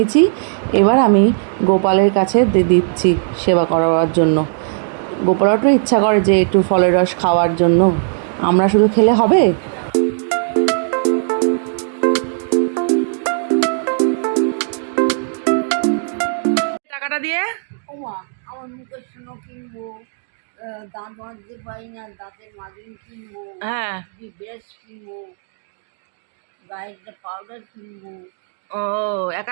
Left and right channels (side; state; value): left; silent; digital silence